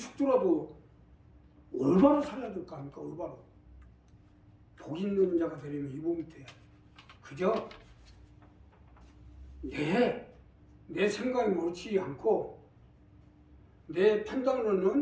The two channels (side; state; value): both; identical; correlation 1.00